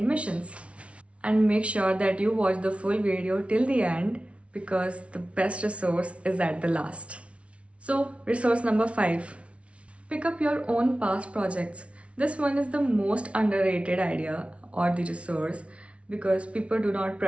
And make sure that you watch the full video till the end because the best resource is at the last. So, resource number 5. Pick up your own past projects. This one is the most underrated idea or the resource because people do not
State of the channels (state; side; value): late; left; 0.062 ms